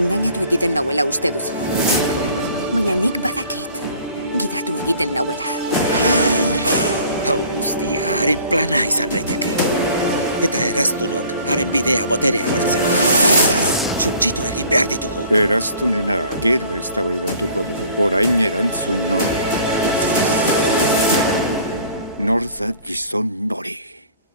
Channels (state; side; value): inverted; both; correlation -0.52